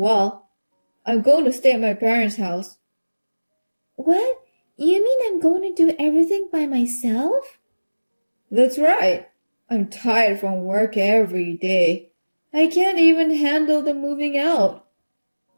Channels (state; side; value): inverted; both; correlation -1.00